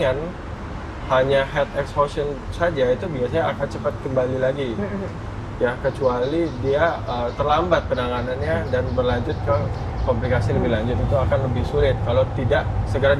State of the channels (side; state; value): both; identical; correlation 1.00